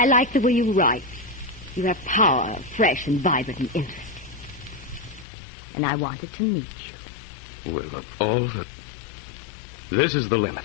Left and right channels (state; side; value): drops out; right; at 5.2 s